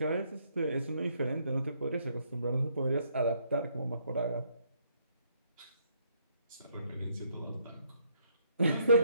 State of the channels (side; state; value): both; inverted; correlation -0.70